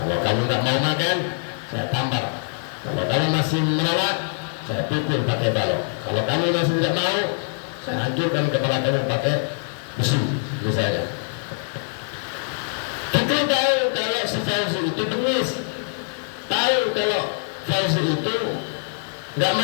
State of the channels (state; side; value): silent; right; digital silence